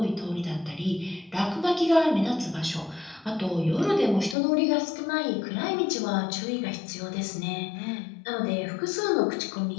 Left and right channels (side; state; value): right; drops out; at 4.4 s